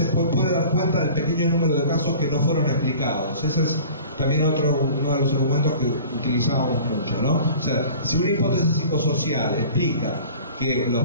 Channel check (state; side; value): inverted; both; correlation -0.44